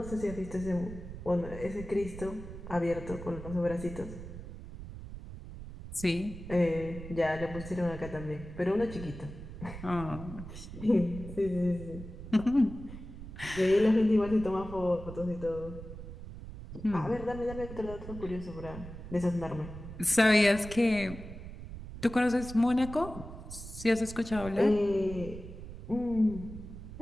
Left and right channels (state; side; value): noise; right; rumble, 11 dB below the sound